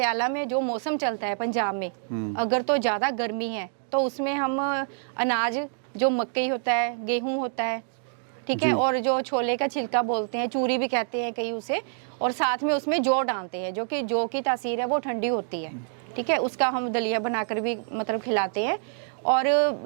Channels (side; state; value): left; silent; 61 dB below the other